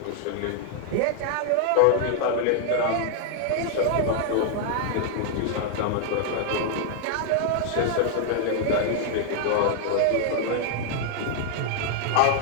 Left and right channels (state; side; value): different; both; correlation -0.01